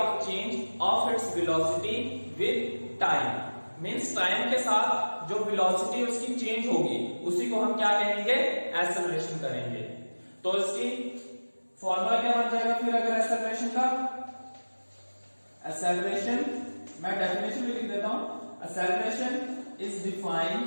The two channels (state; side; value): inverted; both; correlation -1.00